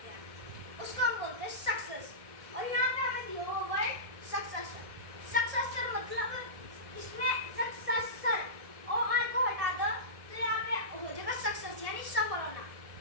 हैं? उसको हम बोलते हैं सक्सेस। और यहाँ पे हमें दिया हुआ वर्ड सक्सेसर। सक्सेसर मतलब इसमें सक्सेसर और आर को हटा दो तो यहाँ पे हो जाएगा सक्सेस यानी सफल होना।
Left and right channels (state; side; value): late; left; 1.7 ms